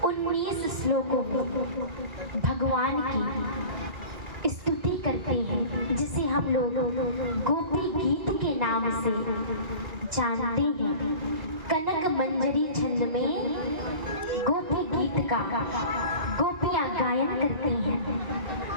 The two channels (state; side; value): late; left; 2.0 ms